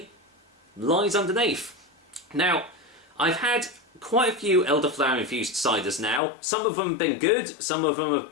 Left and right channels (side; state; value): right; drops out; at 6.2 s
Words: lies underneath. Now, I've had quite a few elderflower infused ciders now. Some of them have been good, some of them have